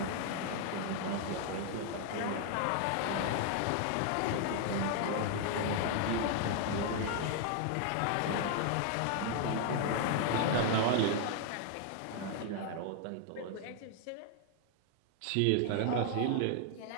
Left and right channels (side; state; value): both; different; correlation 0.00